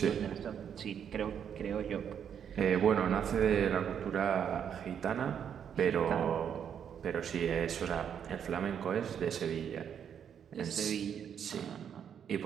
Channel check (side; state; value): left; quieter; 8.3 dB